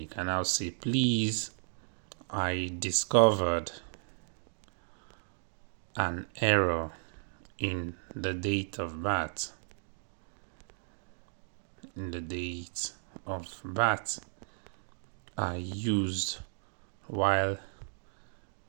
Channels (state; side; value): silent; left; digital silence